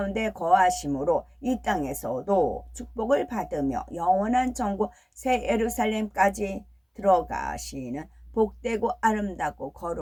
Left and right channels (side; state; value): both; identical; correlation 1.00